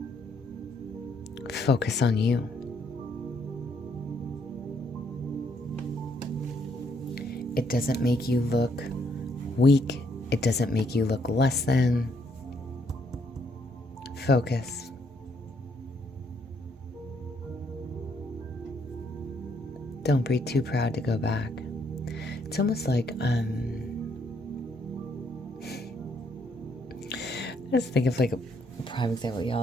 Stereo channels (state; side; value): normal; both; correlation 0.70